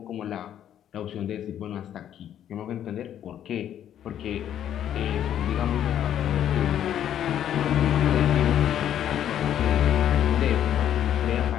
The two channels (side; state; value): right; quieter; 10.5 dB